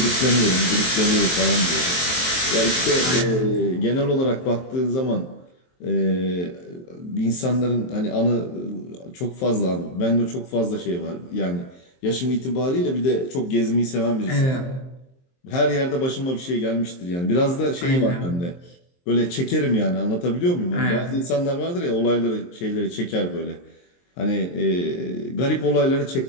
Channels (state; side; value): late; right; 23 ms